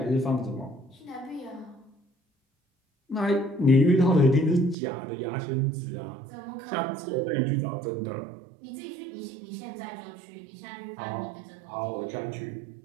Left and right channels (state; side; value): drops out; left; at 4.8 s